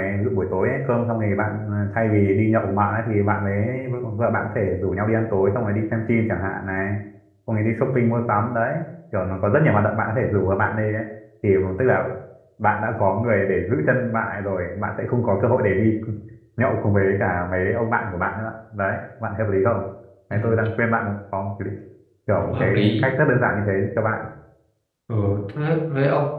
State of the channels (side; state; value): both; identical; correlation 1.00